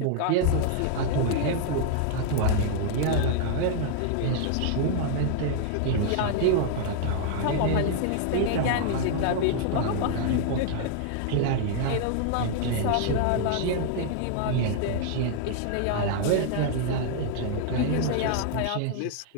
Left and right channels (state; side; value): different; both; correlation 0.00